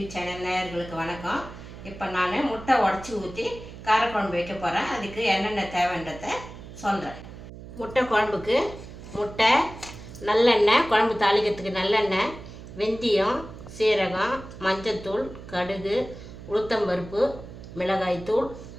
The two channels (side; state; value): right; noise; hum, 14 dB below the sound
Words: சேனல் நேயர்களுக்கு வணக்கம். இப்போ நான் முட்டை உடச்சி ஊற்றி காரக்குழம்பு வைக்க போகிறேன். அதுக்கு என்னென்ன தேவைன்றதை சொல்கிறேன். முட்டை குழம்புக்கு முட்டை, நல்லெண்ணெய், குழம்பு தாளிக்கிறதுக்கு நல்லெண்ணெய், வெந்தயம், சீரகம், மஞ்சத்தூள், கடுகு, உளுத்தம்பருப்பு, மிளகாய்த்தூள்,